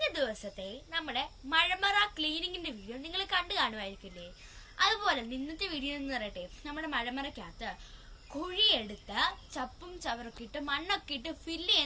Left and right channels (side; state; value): both; identical; correlation 1.00